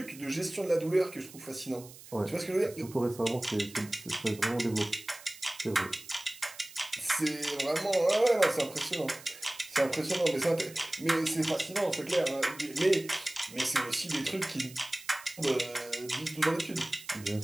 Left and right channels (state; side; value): noise; right; hiss, 18 dB below the sound